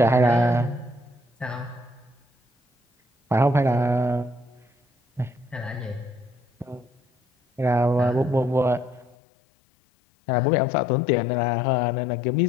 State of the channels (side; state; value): right; drops out; at 9.2 s